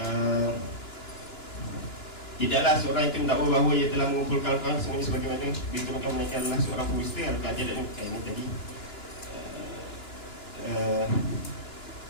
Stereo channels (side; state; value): right; late; 2.9 ms